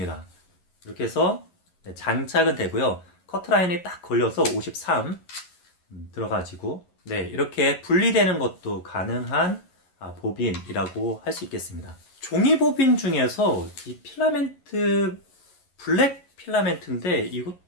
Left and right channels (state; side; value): late; right; 11 ms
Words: 이렇게 해서 장착은 되고요. 커트라인이 딱 걸려서 53 들어가지고 이렇게 분리되는 것도 가능한 보빈이라고 할 수 있겠습니다. 종이 보빈 중에서 이 필라멘트 블랙 필라멘트인데